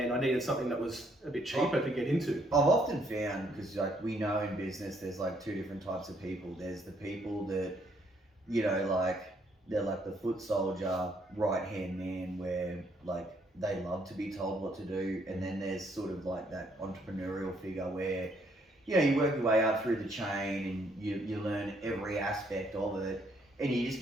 I needed something that was a bit cheaper to get into. I've often found, because like we know in business, there's like two different types of people. There's the people that, you know, like they're like the foot soldier, right hand man, where like they love to be told what to do, and then there's sort of like that entrepreneurial figure where, you know, you work your way up through the chain and you learn every aspect of it, and you just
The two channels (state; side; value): normal; both; correlation 0.69